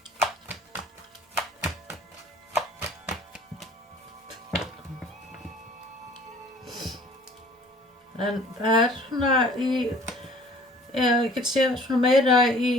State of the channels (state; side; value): normal; both; correlation 0.51